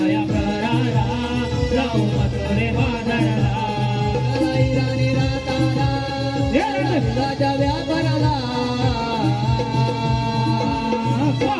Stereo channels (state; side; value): identical; both; correlation 1.00